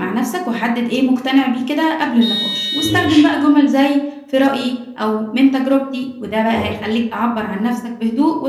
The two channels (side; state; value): both; identical; correlation 1.00